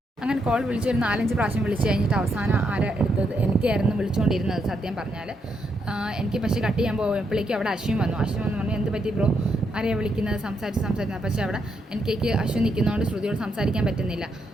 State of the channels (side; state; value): both; normal; correlation 0.79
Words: അങ്ങനെ കോൾ വിളിച്ചൊരു 4-5 പ്രാവശ്യം വിളിച്ച് കഴിഞ്ഞിട്ട് അവസാനം ആരാ എടുത്തത്? എനിക്കായിരുന്നു വിളിച്ചുകൊണ്ടിരുന്നത് സത്യം പറഞ്ഞാൽ. എനിക്ക് പക്ഷേ കട്ട് ചെയ്യാൻ പോയപ്പോഴേക്കും അവിടെ അശ്വിൻ വന്നു പറഞ്ഞു, എന്ത് പറ്റി ബ്രോ, ആരെയാണ് വിളിക്കുന്നത്, സംസാരിക്കുന്നത്. പക്ഷേ അവിടെ എനിക്ക് അശ്വിൻ നിൽക്കുന്നതുകൊണ്ട് ശ്രുതിയോട് സംസാരിക്കാൻ പറ്റുന്നില്ല.